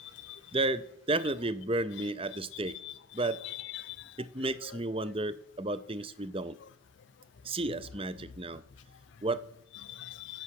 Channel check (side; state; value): both; normal; correlation 0.37